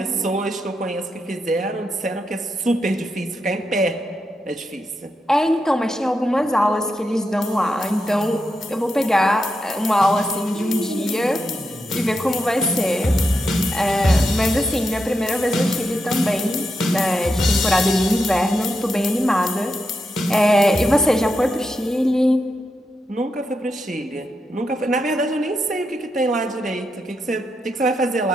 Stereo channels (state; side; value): normal; both; correlation 0.85